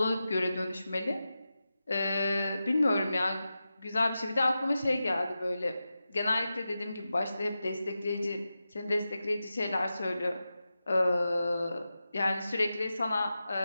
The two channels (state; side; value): inverted; both; correlation -0.92